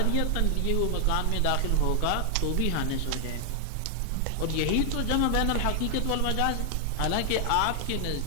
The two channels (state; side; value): different; both; correlation 0.00